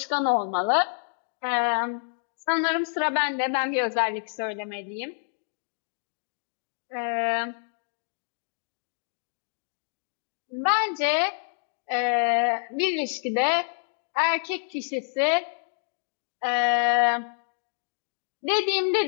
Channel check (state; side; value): silent; right; digital silence